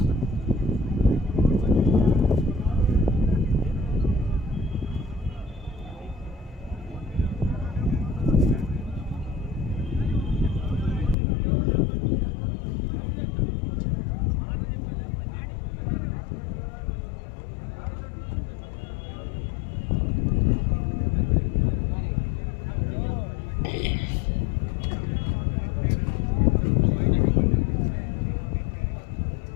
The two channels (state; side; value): drops out; right; at 11.2 s